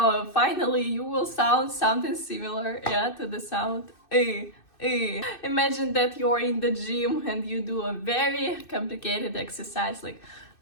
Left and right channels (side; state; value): right; late; 2.6 ms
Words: finally you will sound something similar, to the sound Imagine that you're in the gym and you do a very complicated exercise like